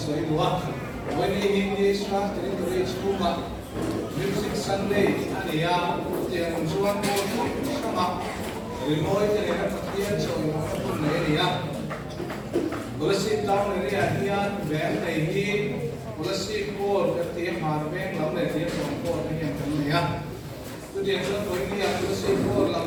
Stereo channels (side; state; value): both; identical; correlation 1.00